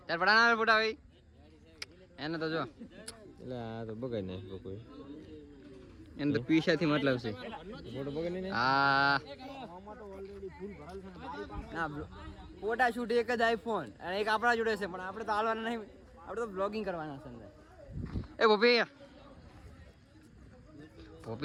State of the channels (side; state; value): both; identical; correlation 1.00